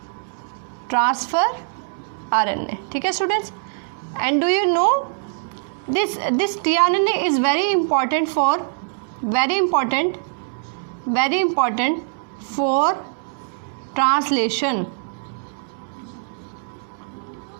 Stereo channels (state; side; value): silent; left; digital silence